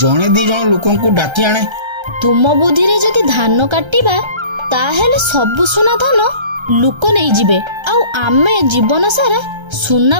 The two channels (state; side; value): late; left; 1.3 ms